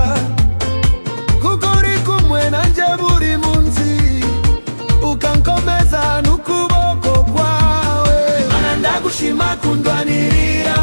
kuko uri kumwe nanje buri munsi, ukankomeza n'ukuboko kwawe. Mana ndagushima kundwanirira,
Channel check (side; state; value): both; inverted; correlation -1.00